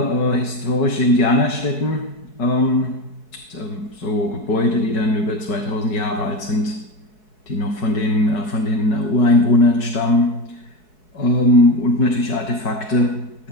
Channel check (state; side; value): late; right; 4.7 ms